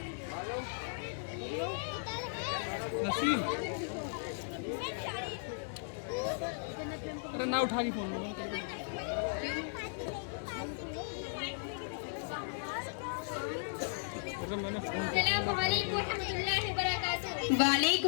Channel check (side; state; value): right; silent; 54 dB below the other